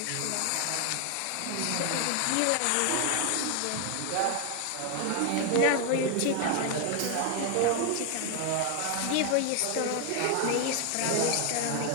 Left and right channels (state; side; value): different; both; correlation 0.00